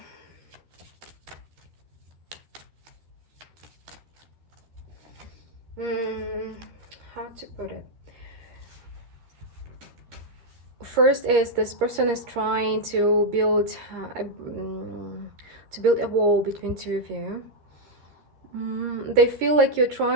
how to put it? First is this person is trying to build a wall between 2 of you. They feel like you're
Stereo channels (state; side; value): late; left; 12 ms